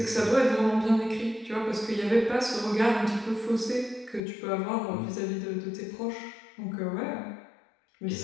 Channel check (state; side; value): drops out; right; at 4.2 s